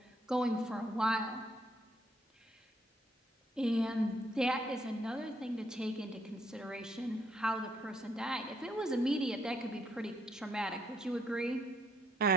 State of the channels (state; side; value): normal; both; correlation 0.71